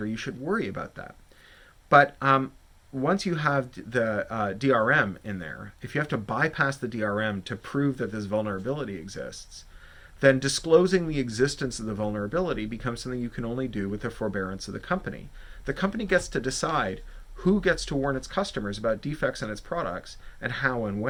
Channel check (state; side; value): identical; both; correlation 1.00